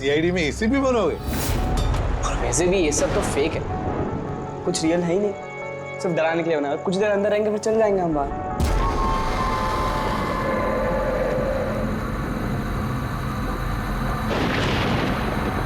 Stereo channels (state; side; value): identical; both; correlation 1.00